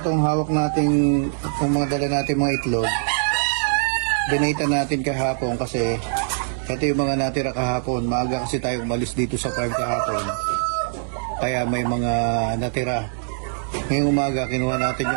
hawak nating, itong mga dala natin mga itlog, binita natin kahapon kasi ito yung mga natira kahapon. Maaga kasi tayo umalis dito sa farm kahapon. Kaya may mga natira. Ngayong umaga, kinuha natin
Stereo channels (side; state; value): left; silent; digital silence